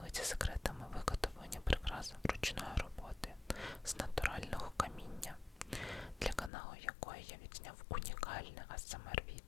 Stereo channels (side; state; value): right; drops out; at 6.5 s